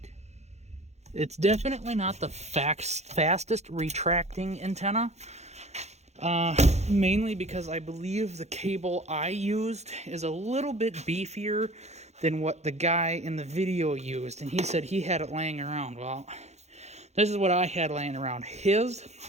It's definitely not the fastest retracting antenna. Mainly because I believe the cable I used is a little bit beefier than what the guy in the video used, and he said he had it laying around. Well, this is what I had laying around. His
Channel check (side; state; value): left; late; 0.32 ms